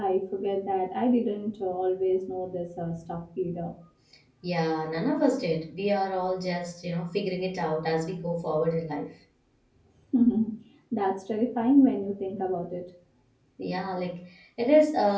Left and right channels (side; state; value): both; identical; correlation 1.00